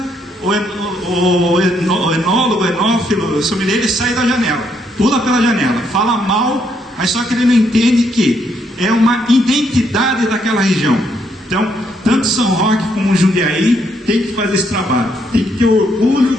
o enólogo, enófilo, o sommelier, ele sai da janela, pula pela janela, fala mal, mas só que ele não entende que é uma identidade daquela região. Então, tanto São Roque como Jundiaí tem que fazer esse trabalho, tem que ter orgulho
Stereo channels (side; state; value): both; normal; correlation 0.73